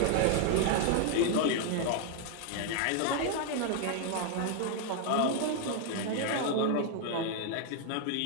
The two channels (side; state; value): both; different; correlation 0.00